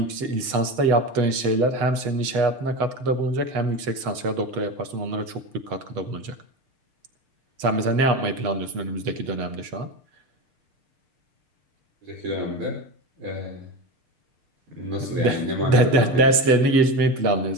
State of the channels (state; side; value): late; left; 6.5 ms